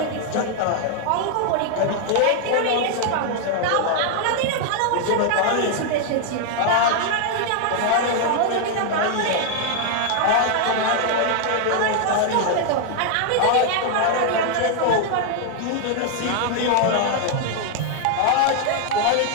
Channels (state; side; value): different; both; correlation 0.00